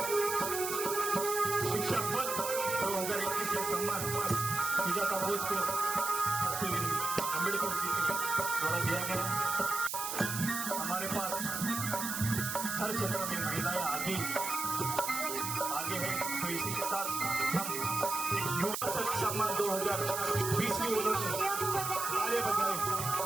शिक्षा पद 2021 से सम्मान सुजाता बोस को अम्बेडकर जी के द्वारा दिया गया। हमारे पास हर क्षेत्र में महिलाएं आगे हैं, तो इसी के साथ हम एक युवा शक्ति सम्मान 2020 में उन्होंने आगे बढ़ाए।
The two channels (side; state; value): right; noise; hiss, 4 dB below the sound